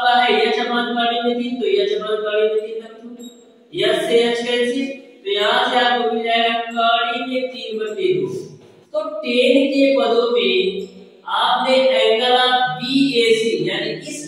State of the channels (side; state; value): both; identical; correlation 1.00